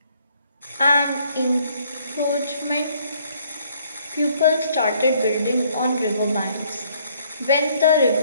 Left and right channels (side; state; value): both; inverted; correlation -0.65